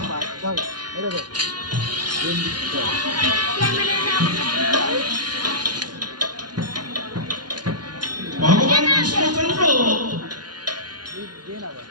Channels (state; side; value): late; left; 0.70 ms